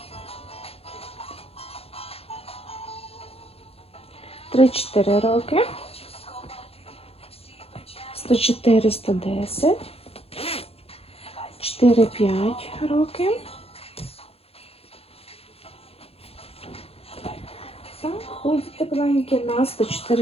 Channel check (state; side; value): late; right; 0.29 ms